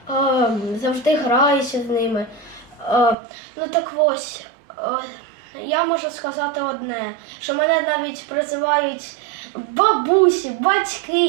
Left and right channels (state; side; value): drops out; left; at 3.2 s